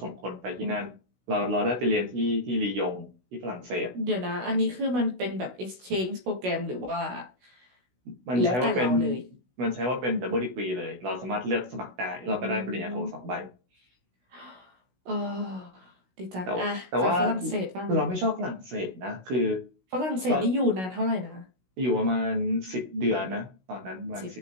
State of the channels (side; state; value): left; late; 16 ms